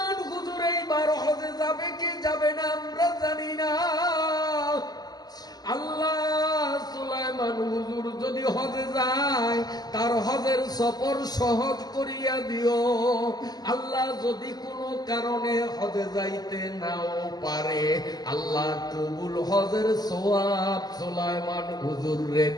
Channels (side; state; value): right; late; 0.19 ms